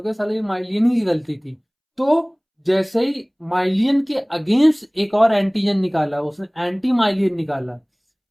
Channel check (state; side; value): identical; both; correlation 1.00